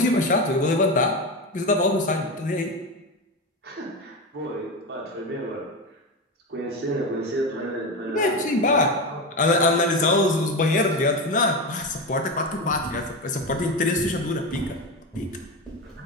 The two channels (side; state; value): both; normal; correlation 0.19